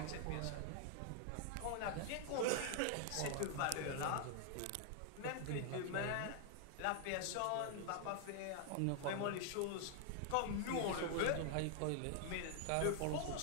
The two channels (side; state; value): both; different; correlation 0.00